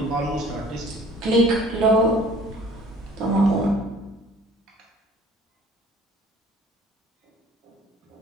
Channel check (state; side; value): normal; both; correlation 0.51